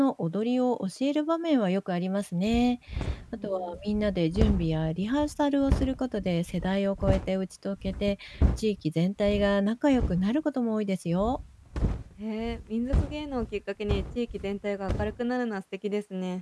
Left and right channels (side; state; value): both; identical; correlation 1.00